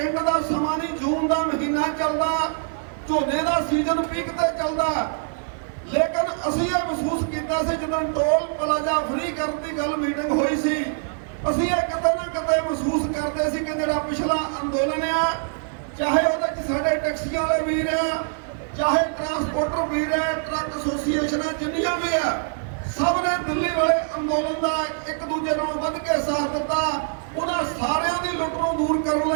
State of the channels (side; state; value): left; silent; 61 dB below the other